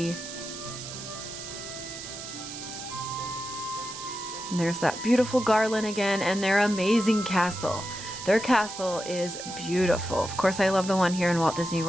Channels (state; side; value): noise; right; hiss, 10 dB below the sound